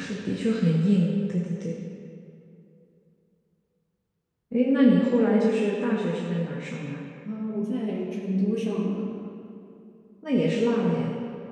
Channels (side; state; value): both; identical; correlation 1.00